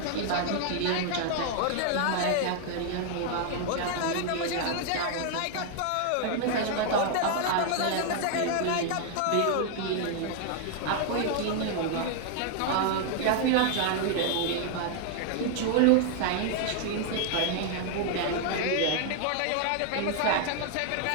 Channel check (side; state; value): both; different; correlation 0.00